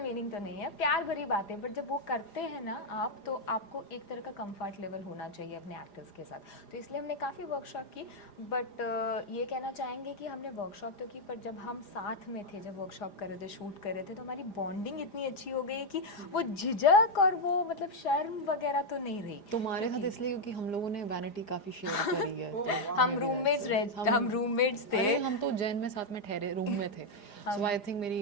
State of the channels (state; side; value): late; right; 4.9 ms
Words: मीनिंग तो नहीं है, प्यार भरी बातें, बट जब वो करते हैं ना आप, तो आपको एक तरह का कंफर्ट लेवल होना चाहिए अपने एक्टर्स के साथ। तो इसलिए हमने काफ़ी वर्कशॉप की, बट ये कहना चाहेंगे कि हमने वर्कशॉप तो की, पर जब हम साथ में थे, जब वर्कशॉप कर रहे थे, शूट कर रहे थे, तो हमारी बॉन्डिंग इतनी अच्छी हो गई कि वो झिझक और वो मतलब शर्म वगैरह तो नहीं रही। तुम्हारे साथ इसलिए क्योंकि हम लोगों ने वैनिटी काफी शेयर करी है। तो हम रूममेट्स थे। अरे हम तो जैन में साथ में ठहरे रूम में थे, सो आई थिंक मेरी